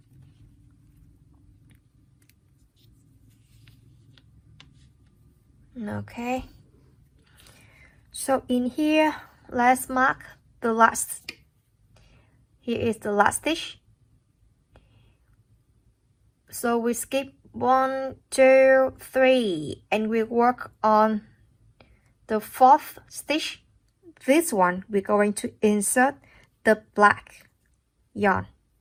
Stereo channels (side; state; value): both; identical; correlation 1.00